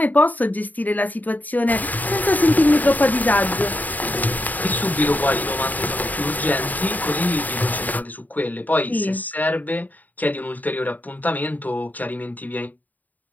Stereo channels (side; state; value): right; late; 0.081 ms